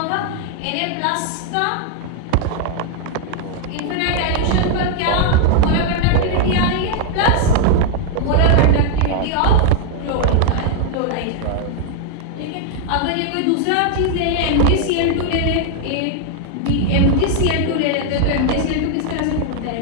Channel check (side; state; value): both; different; correlation 0.00